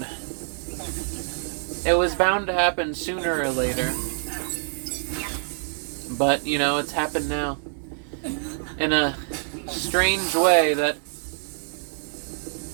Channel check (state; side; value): silent; left; digital silence